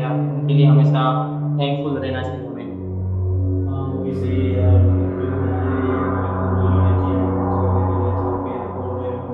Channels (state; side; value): identical; both; correlation 1.00